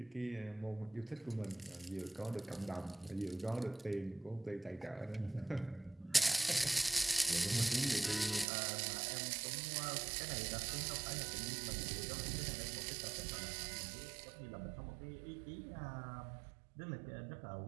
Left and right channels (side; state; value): left; drops out; at 8.5 s